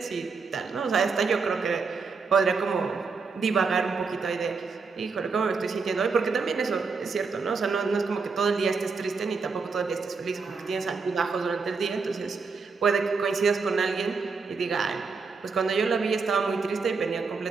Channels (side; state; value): left; quieter; 4.7 dB